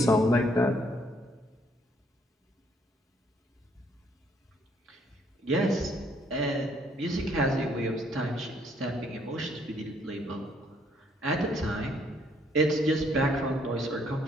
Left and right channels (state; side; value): normal; both; correlation 0.67